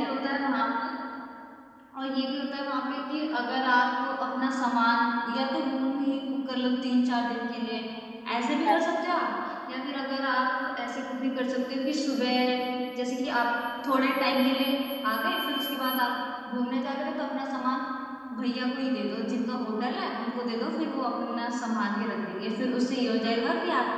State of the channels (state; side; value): identical; both; correlation 1.00